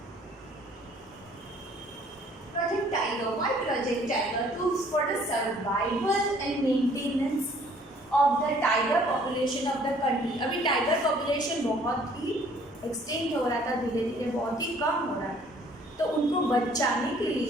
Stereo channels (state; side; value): normal; both; correlation 0.58